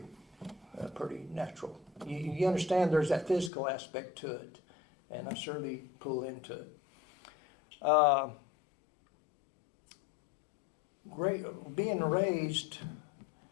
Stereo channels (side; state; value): right; drops out; at 3.5 s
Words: natural. You understand there's that physical aspect to it, and I certainly pull into it. Being raised,